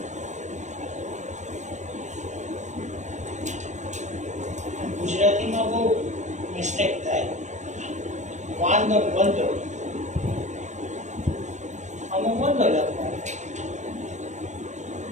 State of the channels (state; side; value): late; left; 0.34 ms